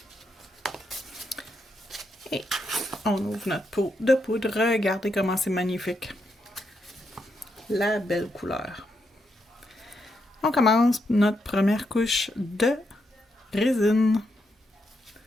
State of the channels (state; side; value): normal; both; correlation 0.81